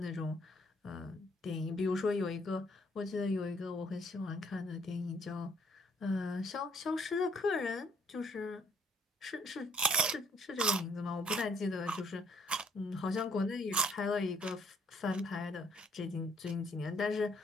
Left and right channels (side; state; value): both; normal; correlation 0.65